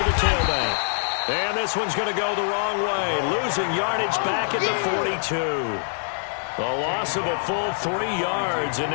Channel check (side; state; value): right; silent; digital silence